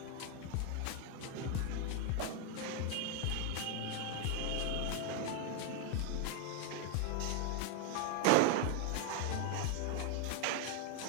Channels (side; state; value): both; different; correlation 0.01